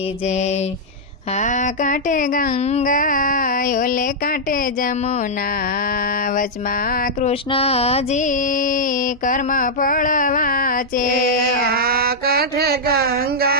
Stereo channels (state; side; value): normal; both; correlation -0.06